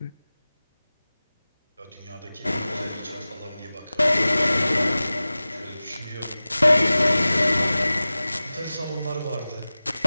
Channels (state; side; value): inverted; both; correlation -0.97